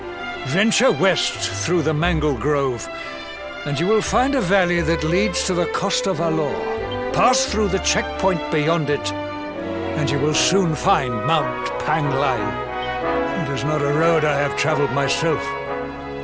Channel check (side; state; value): both; identical; correlation 1.00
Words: Venture west through the Mangle Grove, and you will find a valley that leads to the Coast of Alor. Pass through the checkpoint beyond it, and you will soon find Mount Pang Lai. It is not a road I have traveled myself.